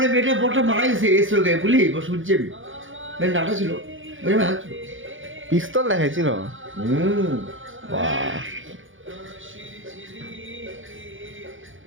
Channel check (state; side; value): late; left; 0.57 ms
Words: মেয়েটা বড়টা মারা গেছে এসে গায়ে বলি শুনছি আমি মেয়ের নাটা ছিল মেয়ের হাত ছিল পিস্তল দেখাইছিল